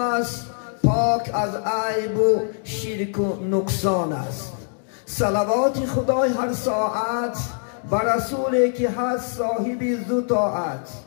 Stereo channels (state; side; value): silent; right; digital silence